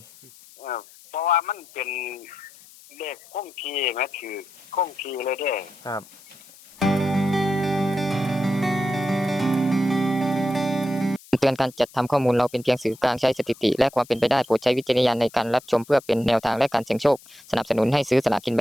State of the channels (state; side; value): noise; left; hiss, 23 dB below the sound